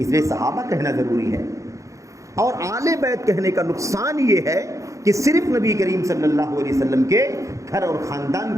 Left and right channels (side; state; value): left; late; 0.15 ms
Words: لیے صحابہ کہنا ضروری ہے. اور آل بیت کہنے کا نقصان یہ ہے کہ صرف نبی کریم صلی اللہ علیہ وسلم کے گھر اور